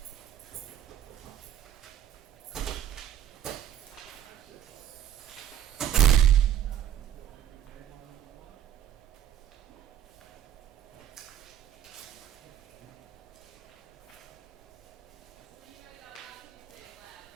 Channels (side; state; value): left; quieter; 10.4 dB